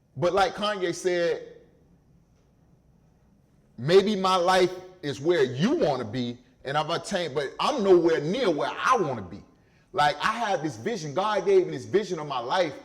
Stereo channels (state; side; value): identical; both; correlation 1.00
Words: But like Kanye said, maybe my life is where you want to be, and I've attained, but I'm nowhere near where I want to be. Like, I have this vision. God gave me this vision of my life,